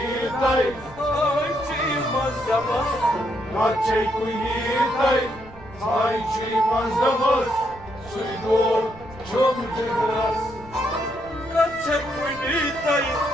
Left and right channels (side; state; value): right; noise; rumble, 20 dB below the sound